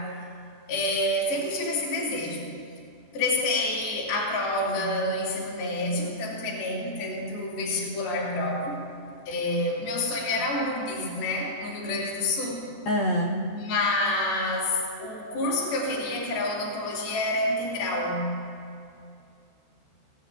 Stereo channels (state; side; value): late; right; 14 ms